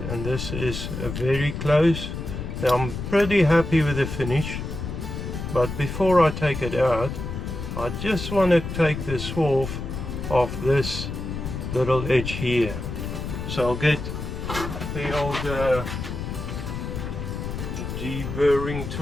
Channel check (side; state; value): left; noise; rumble, 6 dB below the sound